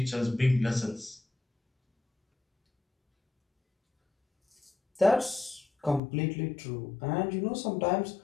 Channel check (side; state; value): right; drops out; at 6.0 s